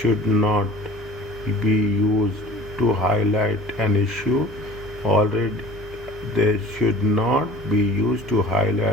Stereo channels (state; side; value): noise; right; hum, 16 dB below the sound